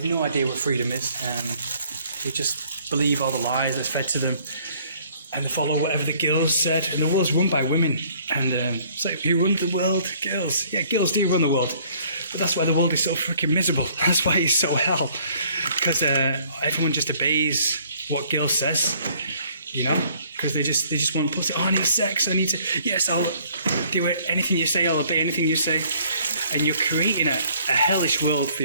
no idea what freedom is. They just believe all the lies that's fed to them, and they follow whatever the girls said. And the world's run by women. And it's like, who runs the world? Girls. Yeah, girls do run the world. But that's why the world is so freaking miserable. That's why it's so hell. Because everyone just obeys what girl says, because they just want pussy. Oh, I need sex. I need to. Yes, I'll do it. Anything you say, I'll obey anything you say. And you're creating a hellish world for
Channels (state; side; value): inverted; both; correlation -0.60